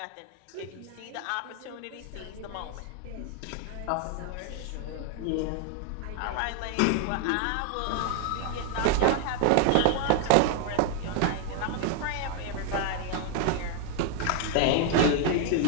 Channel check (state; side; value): different; both; correlation 0.01